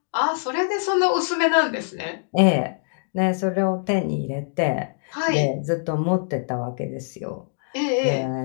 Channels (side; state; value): right; silent; digital silence